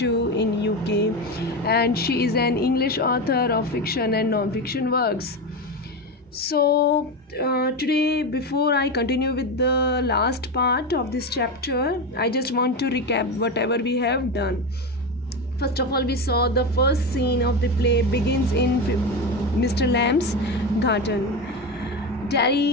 in UK, and she is an English author of fiction and non-fiction works. So today, before I continue with the last part of this chapter, I just want to recap whatever we have done. First of all, we saw the first scene of the play begins in Mr. Lamb's garden.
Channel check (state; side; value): normal; both; correlation 0.18